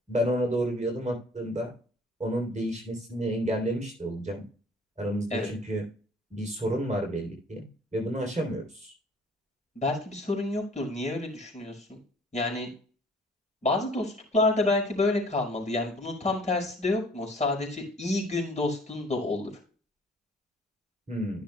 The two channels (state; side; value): normal; both; correlation 0.54